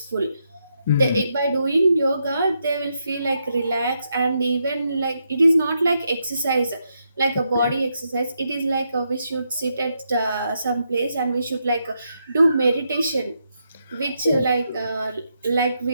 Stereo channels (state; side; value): inverted; both; correlation -0.81